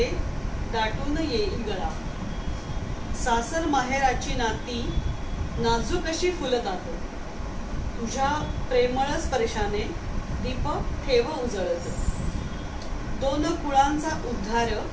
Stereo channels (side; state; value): both; identical; correlation 1.00